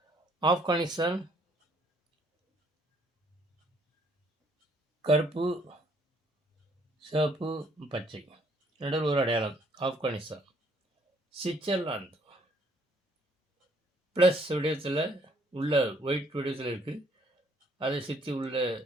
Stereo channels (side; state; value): both; normal; correlation 0.64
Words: ஆப்கானிஸ்தான் கருப்பு, சிவப்பு, பச்சை, நடுவில் ஒரு அடையாளம். ஆப்கானிஸ்தான். சுவிட்சர்லாந்து ப்ளஸ் வடிவத்தில் உள்ள ஒயிட் வடிவத்தில் இருக்குது. அதை சுற்றி உள்ள